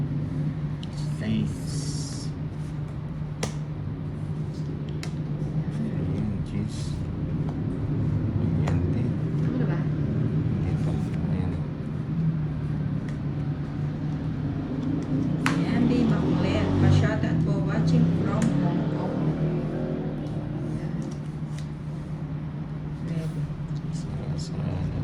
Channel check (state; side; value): identical; both; correlation 1.00